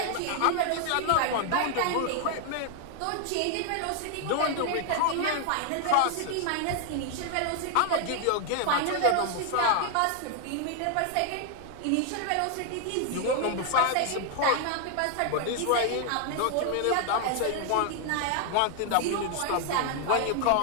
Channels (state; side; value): different; both; correlation 0.00